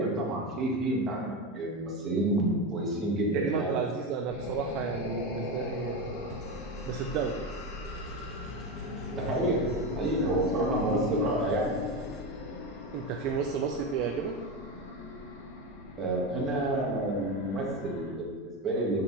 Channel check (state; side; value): normal; both; correlation 0.17